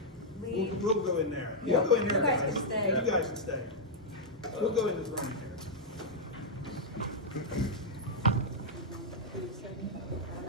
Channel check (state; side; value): normal; both; correlation -0.05